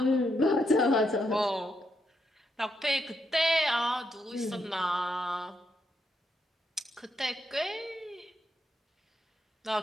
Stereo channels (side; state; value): both; normal; correlation 0.80